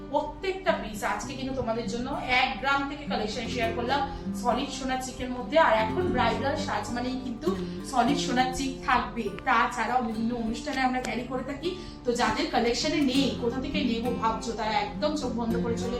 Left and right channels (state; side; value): identical; both; correlation 1.00